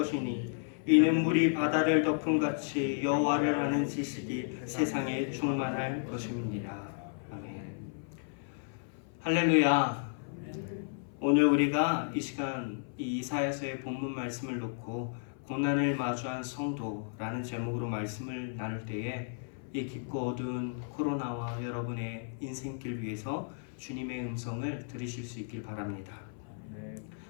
이는 물이 바다를 덮은 같이 여호와를 아는 지식이 세상에 충만할 것입니다. 아멘. 할렐루야. 오늘 우리가 이 시간 이 이사야서의 본문 말씀을 놓고 고난을 마주한 성도라는 제목으로 말씀을 나눌 때에 이 깊고 어두운 코로나와 여러분의 인생길 위해서 주님의 음성을 들으실 수 있길 바랍니다. 네.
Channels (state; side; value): silent; right; 56 dB below the other